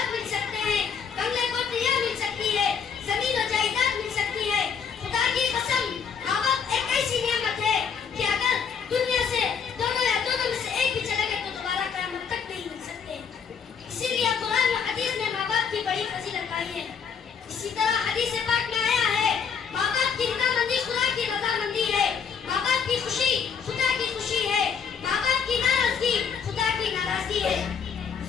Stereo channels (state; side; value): quieter; right; 6.8 dB